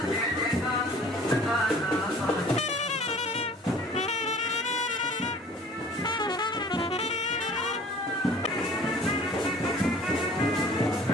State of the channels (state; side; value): normal; both; correlation 0.49